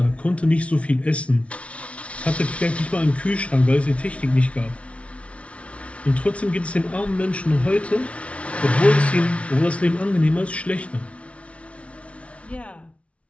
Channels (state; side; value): late; right; 0.062 ms